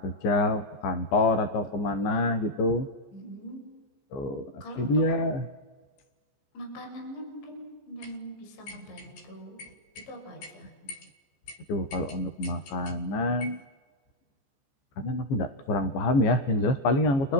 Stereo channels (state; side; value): late; right; 14 ms